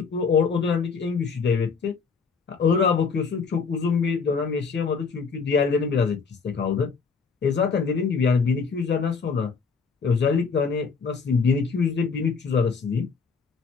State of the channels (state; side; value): quieter; right; 5.3 dB